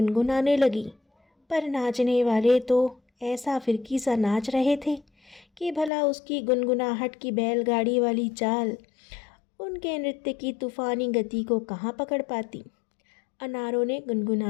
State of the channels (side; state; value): right; drops out; at 5.9 s